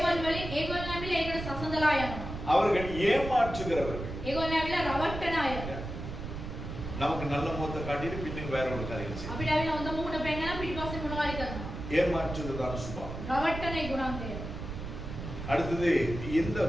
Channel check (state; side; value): noise; right; rumble, 7 dB below the sound